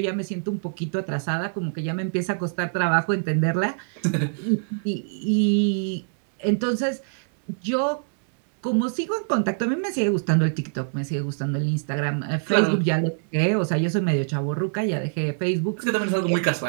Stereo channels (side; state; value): left; silent; 62 dB below the other